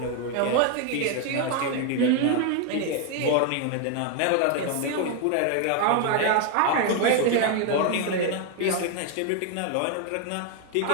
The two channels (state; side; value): different; both; correlation 0.01